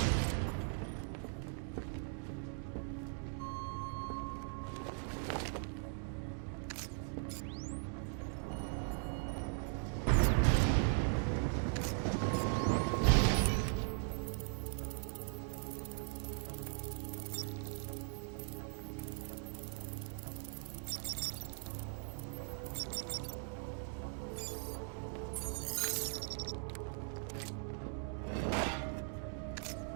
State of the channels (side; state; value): left; silent; 51 dB below the other